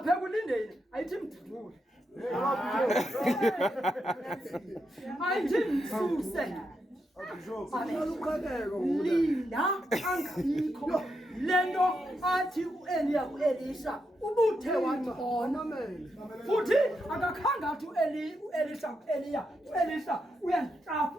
kulindeni ayithi mdudule. Ayithi msuse. Linda angabikho lento athi uEliya kuElisha ubuthe wathona futhi akakhanga athi uElisha kuEliya uElisha uyantrafu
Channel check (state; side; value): normal; both; correlation 0.83